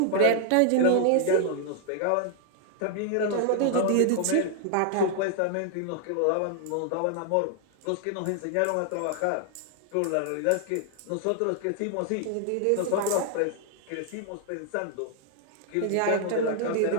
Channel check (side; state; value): both; different; correlation 0.00